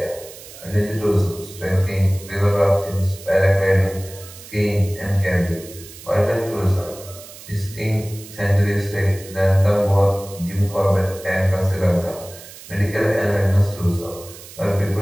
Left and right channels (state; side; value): noise; right; hiss, 17 dB below the sound